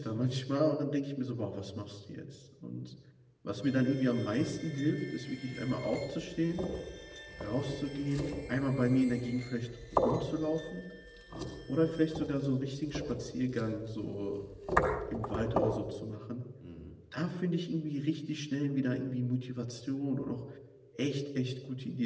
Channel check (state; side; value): identical; both; correlation 1.00